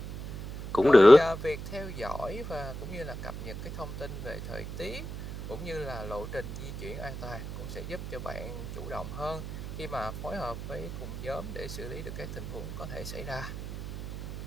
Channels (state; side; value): noise; right; hum, 8 dB below the sound